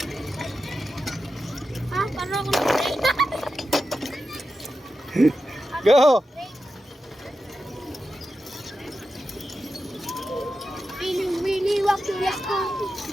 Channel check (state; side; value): normal; both; correlation 0.91